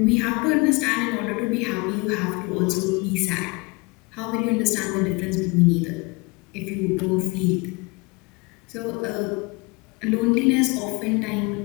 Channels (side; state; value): right; quieter; 27.4 dB